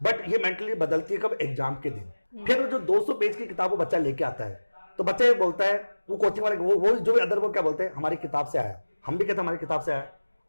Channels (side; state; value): both; inverted; correlation -1.00